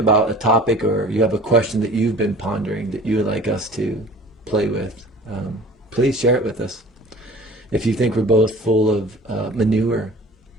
a topic, or you have a question that you've been pondering that you would like us to play with, please share it with us. If you think we're both full of manure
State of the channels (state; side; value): normal; both; correlation 0.44